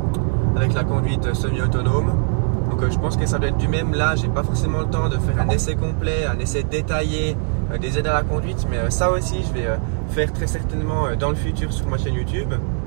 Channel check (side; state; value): left; silent; 56 dB below the other